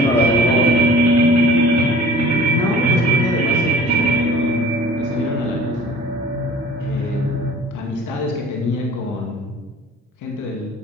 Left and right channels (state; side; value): normal; both; correlation 0.47